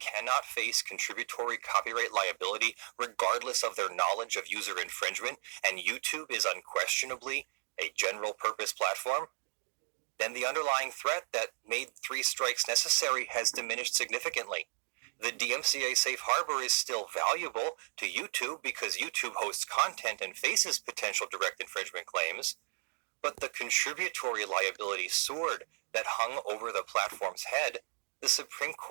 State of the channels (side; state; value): left; silent; digital silence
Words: face contributory copyright liability regardless of their knowledge of user infringement, and YouTube is unquestionably a general-purpose platform, then the underlying threat that made 3 strikes necessary has diminished significantly. The DMCA safe harbor is still valuable to YouTube because YouTube hosts content and faces potential direct infringement claims, but the contributory liability sword that hung over the platform's head, the Supreme